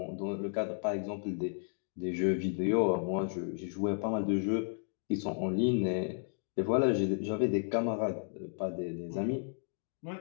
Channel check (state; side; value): silent; right; digital silence